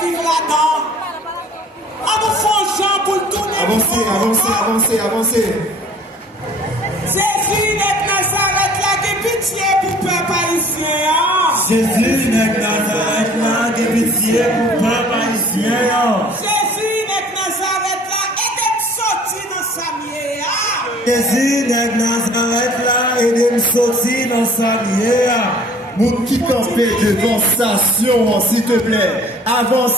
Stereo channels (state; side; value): normal; both; correlation 0.52